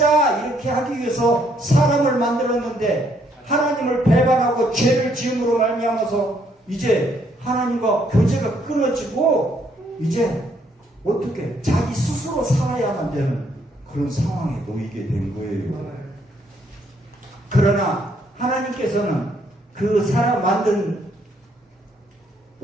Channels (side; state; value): both; normal; correlation 0.70